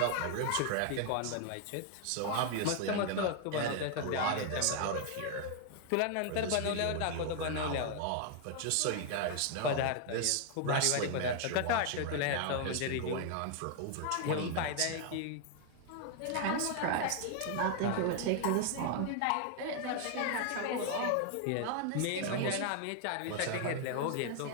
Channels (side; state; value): both; different; correlation 0.00